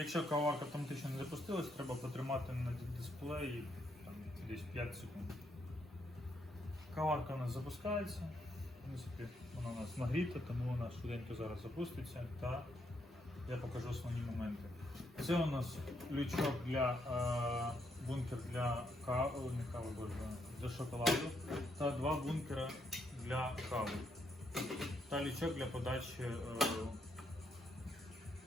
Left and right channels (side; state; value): both; normal; correlation 0.76